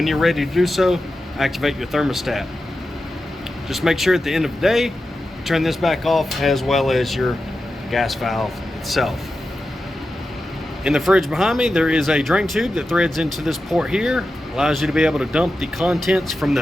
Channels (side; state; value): both; normal; correlation 0.91